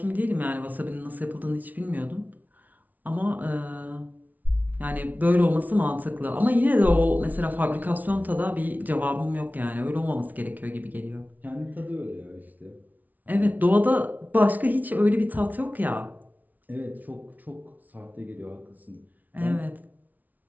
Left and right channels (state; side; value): late; left; 0.077 ms